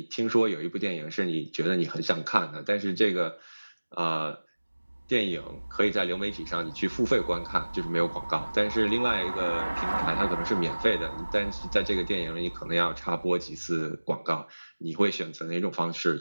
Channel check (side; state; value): both; inverted; correlation -1.00